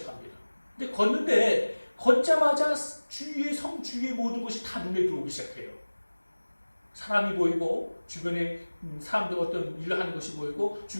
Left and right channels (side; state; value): both; inverted; correlation -1.00